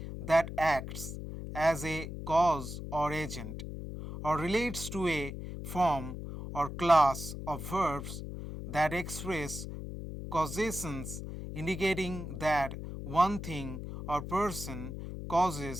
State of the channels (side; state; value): left; noise; hum, 8 dB below the sound